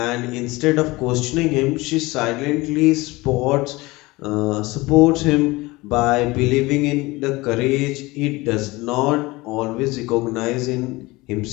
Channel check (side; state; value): right; quieter; 21.7 dB